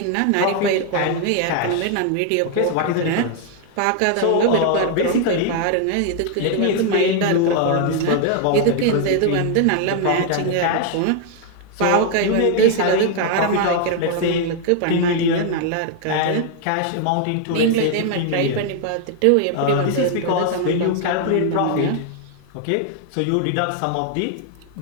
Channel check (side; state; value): both; different; correlation 0.00